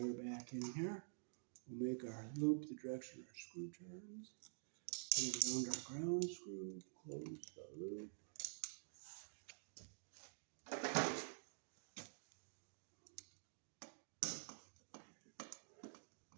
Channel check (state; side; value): silent; left; digital silence